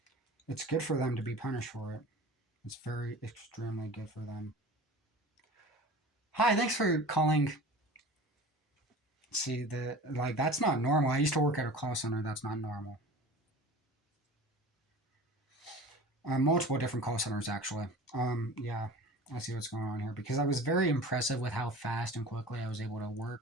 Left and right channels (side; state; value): both; normal; correlation 0.39